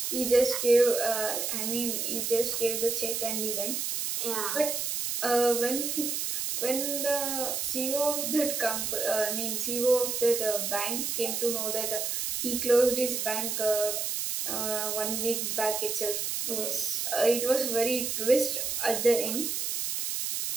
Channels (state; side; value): noise; right; hiss, 1 dB below the sound